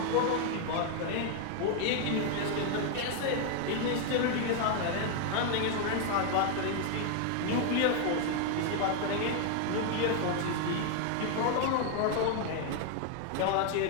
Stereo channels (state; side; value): different; both; correlation 0.00